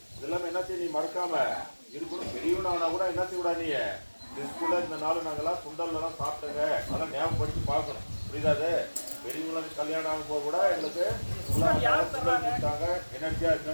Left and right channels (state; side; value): inverted; both; correlation -1.00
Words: இதெல்லாம் என்ன செய்ய நீ மறக்காம இருக்கணும். பெரியவனானா கூட என்ன செய்ய விடா, நீ ஸ்கூல்ல இந்த நாள் நாங்கெல்லாம் சுண்டல்லாம் சாப்பிட்டங்க, அதெல்லாம் ஞாபகப்படுத்தி பார்க்கணும். புரியுதாது? பெரியவங்களுக்கு கல்யாணம் ஆகும் போது கூட எங்களுக்கு சுண்டல் கொடுத்தாங்க, எனர்ஜியா